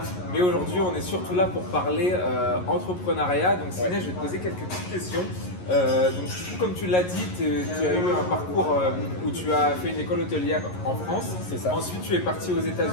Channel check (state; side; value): late; right; 11 ms